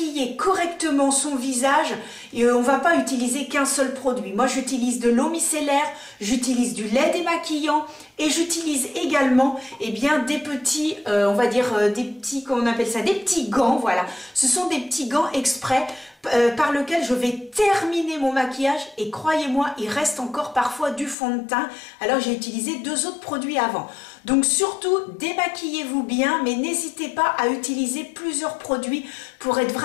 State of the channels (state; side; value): drops out; right; at 21.2 s